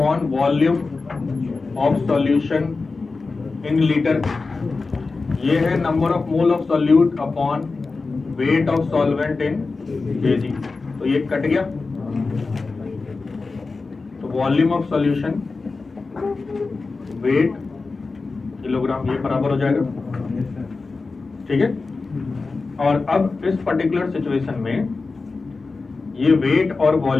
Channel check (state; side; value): quieter; right; 4.0 dB